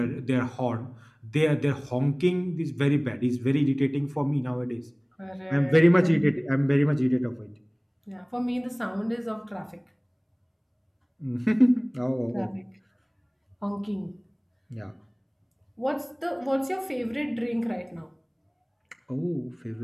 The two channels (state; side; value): identical; both; correlation 1.00